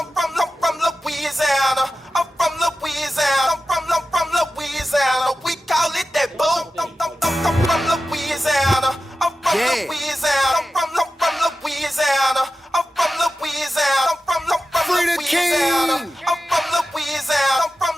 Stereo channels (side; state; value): both; normal; correlation 0.93